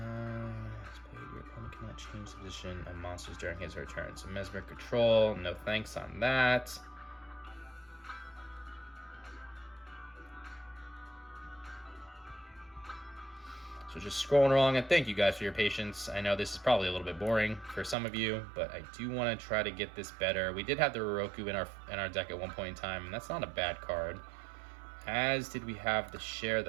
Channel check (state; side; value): drops out; left; at 17.9 s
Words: opponent cannot change the position of monsters during his or her turn. So Mesmeric Control, no thanks on that. So just scrolling along, and thank you guys for your patience. I know this is probably a little bit boring for some of you, but I do want to try to get this better. We did have the Roroku in our deck at one point in time, and that's not a bad card. As did we have the Share